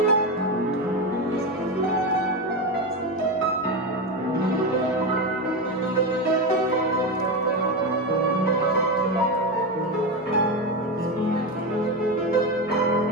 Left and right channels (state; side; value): normal; both; correlation 0.15